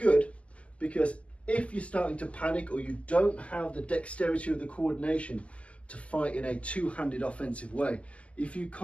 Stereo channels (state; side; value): late; right; 0.062 ms